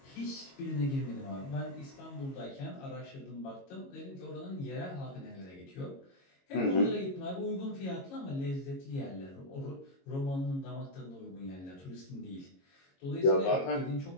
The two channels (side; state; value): right; late; 22 ms